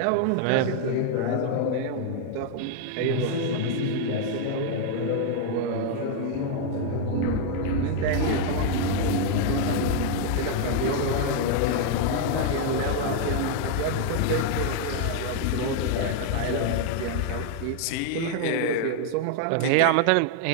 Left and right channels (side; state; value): both; different; correlation 0.00